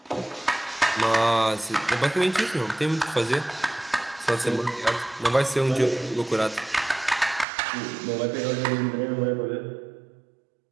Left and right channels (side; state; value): left; drops out; at 7.5 s